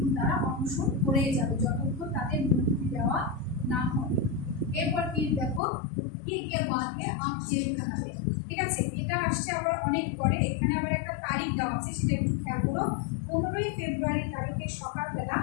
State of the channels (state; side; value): drops out; right; at 5.6 s